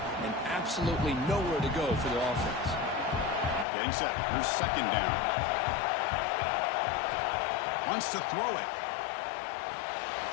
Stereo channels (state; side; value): drops out; right; at 3.7 s